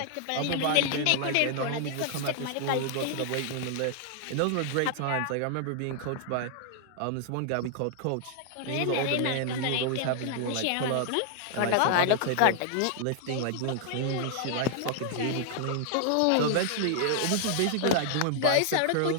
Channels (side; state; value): both; different; correlation 0.00